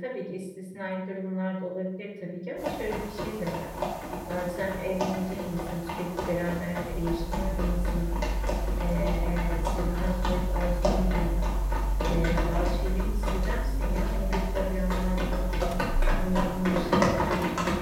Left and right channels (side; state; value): both; identical; correlation 1.00